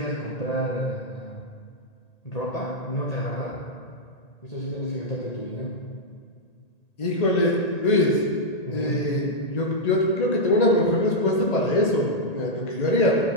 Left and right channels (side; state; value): right; late; 1.8 ms